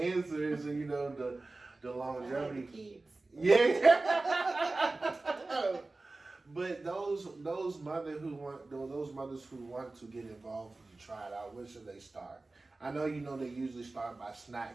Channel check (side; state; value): left; quieter; 3.3 dB